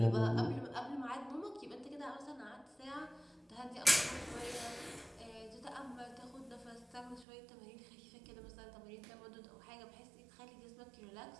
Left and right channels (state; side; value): drops out; left; at 7.2 s